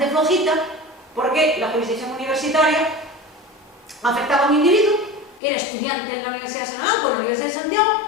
flojita, porque la jurisdicción universitaria afectaba a un individuo que era estudiante en la Universidad de Salamanca o en la Universidad de Santiago,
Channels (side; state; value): right; drops out; at 5.4 s